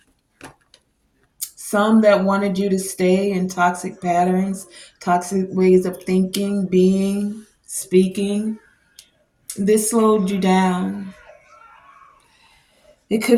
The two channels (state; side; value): identical; both; correlation 1.00